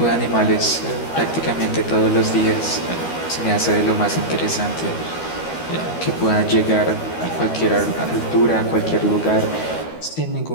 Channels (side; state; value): right; late; 13 ms